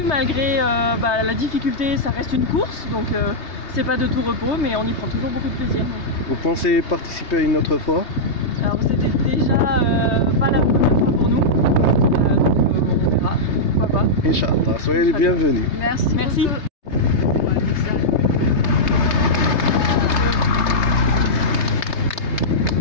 malgré la difficulté, ça reste une course, donc c'est pas de tout repos, mais on y prend toujours beaucoup de plaisir. Donc. Vous pensez participer une autre fois? Alors c'était déjà pas la première fois pour nous, donc on verra, pourquoi pas. Inch'Allah, soyez les bienvenus. Merci. Merci. Beaucoup.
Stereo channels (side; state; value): right; late; 3.3 ms